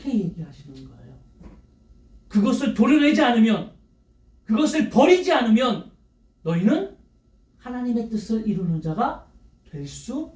얘기하시는 거예요. 그것을 도려내지 않으면, 그것을 버리지 않으면 너희는 하나님의 뜻을 이루는 자가 될 수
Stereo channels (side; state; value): both; identical; correlation 1.00